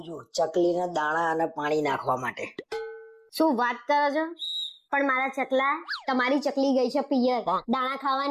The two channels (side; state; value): both; identical; correlation 1.00